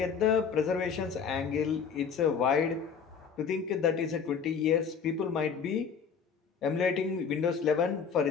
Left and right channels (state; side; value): quieter; right; 6.3 dB